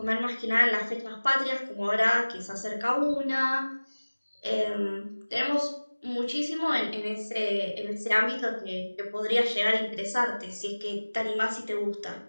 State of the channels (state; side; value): inverted; both; correlation -1.00